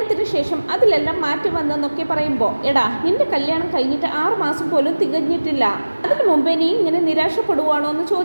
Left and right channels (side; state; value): both; inverted; correlation -1.00